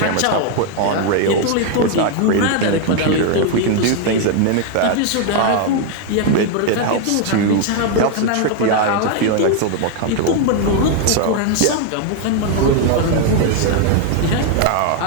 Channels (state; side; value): different; both; correlation 0.01